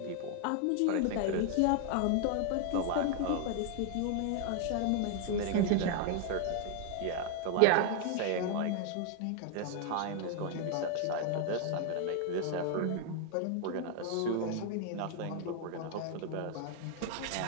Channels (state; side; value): different; both; correlation 0.00